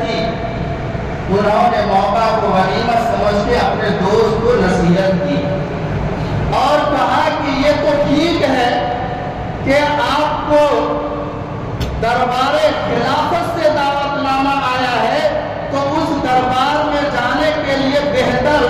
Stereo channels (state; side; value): identical; both; correlation 1.00